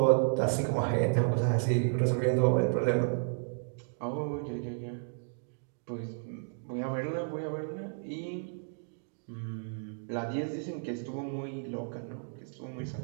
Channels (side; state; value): left; silent; digital silence